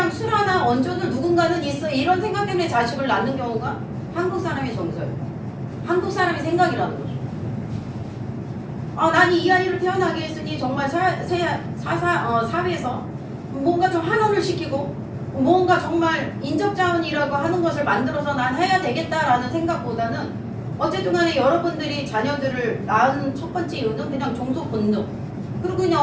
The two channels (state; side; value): identical; both; correlation 1.00